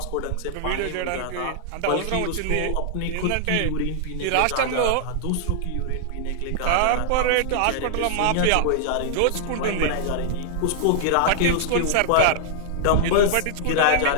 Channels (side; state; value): both; different; correlation -0.01